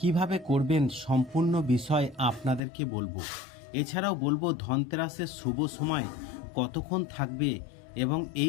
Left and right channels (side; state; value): right; drops out; at 2.6 s